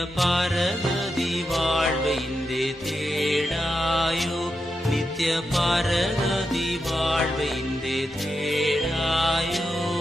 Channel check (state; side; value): normal; both; correlation 0.87